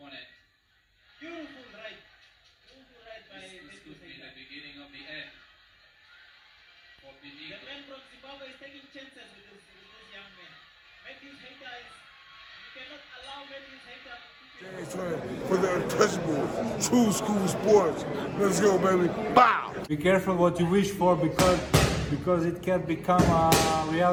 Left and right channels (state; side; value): identical; both; correlation 1.00